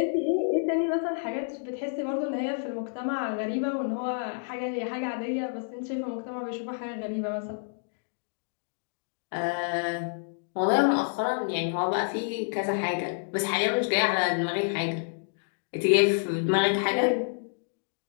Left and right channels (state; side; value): silent; right; digital silence